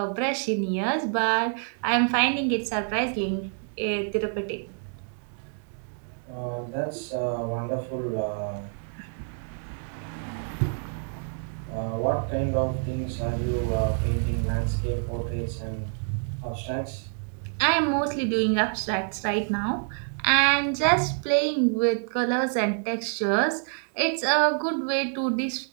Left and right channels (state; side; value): silent; left; 56 dB below the other